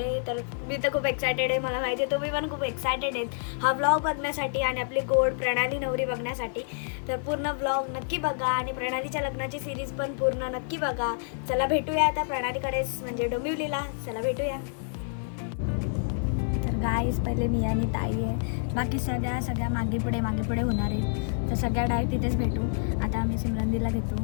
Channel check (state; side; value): silent; right; digital silence